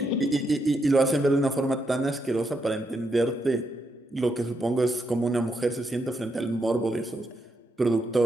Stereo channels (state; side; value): normal; both; correlation 0.81